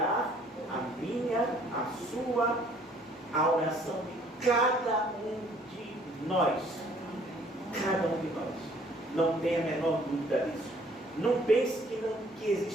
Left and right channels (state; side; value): normal; both; correlation 0.59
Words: a minha, a sua, a oração de cada um de nós. Cada um de nós. Não tenha a menor dúvida disso. Não pense que